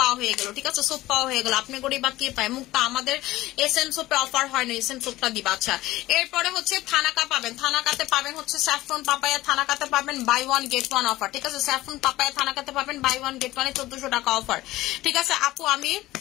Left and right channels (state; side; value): quieter; right; 17.2 dB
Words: পাওয়া হয়ে গেল, ঠিক আছে? সোপ পাওয়া হয়ে গেল। আপনি গরিব বা কে পায়? মুক্তা আমাদের এসএম সোপে অফার হয় না, এসএম সোপটা দিবা। আচ্ছা, এরপরে হচ্ছে থানাকা পাবেন, থানাকাতে পাবেন হচ্ছে স্যাফরন পাপায়া, থানাকাতে পাবেন buy one get one offer, ঠিক আছে? স্যাফরন পাপায়া থানাকাতে পাবেন বাই ওয়ান গেট ওয়ানে 1400 টাকা অফার, ঠিক আছে? আপু